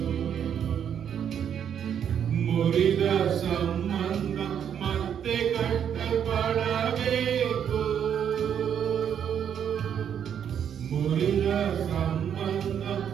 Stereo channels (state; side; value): quieter; left; 8.6 dB